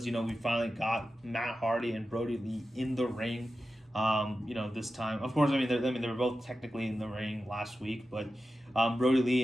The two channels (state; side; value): normal; both; correlation 0.92